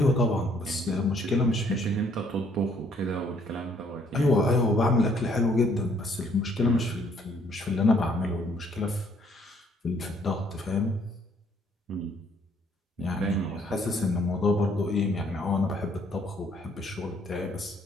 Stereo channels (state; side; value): normal; both; correlation 0.65